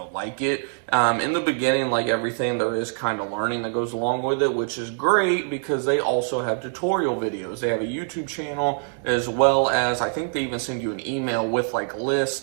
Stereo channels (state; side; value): silent; left; digital silence